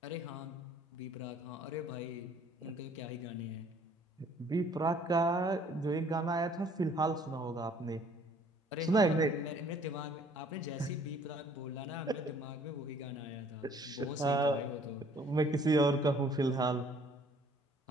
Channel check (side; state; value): both; normal; correlation 0.58